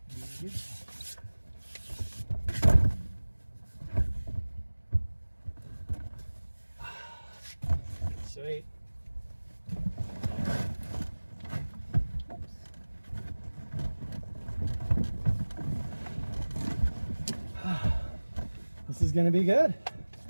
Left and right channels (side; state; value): both; inverted; correlation -1.00